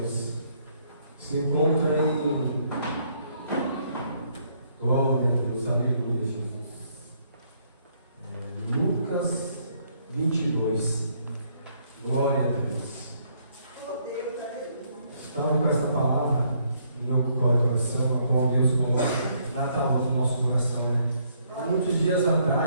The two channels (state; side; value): inverted; both; correlation -0.69